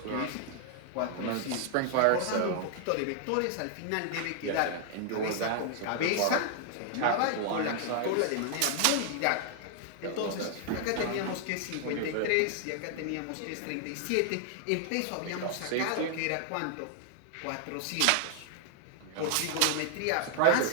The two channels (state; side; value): different; both; correlation 0.00